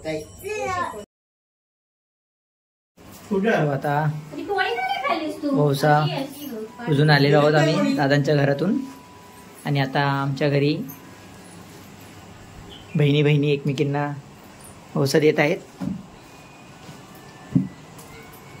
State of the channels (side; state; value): both; identical; correlation 1.00